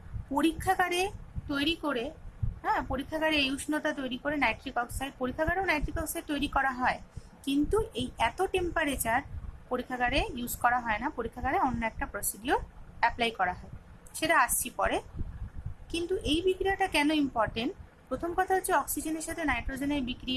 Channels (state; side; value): identical; both; correlation 1.00